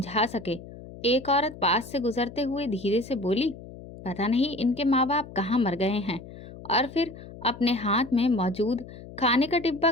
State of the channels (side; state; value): left; noise; hum, 15 dB below the sound